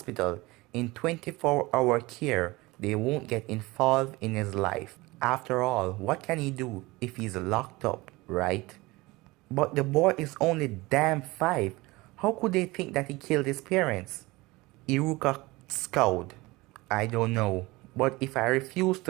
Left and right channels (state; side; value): quieter; left; 21.8 dB